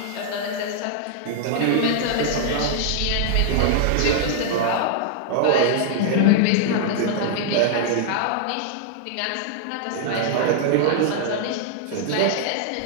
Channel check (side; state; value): both; different; correlation -0.01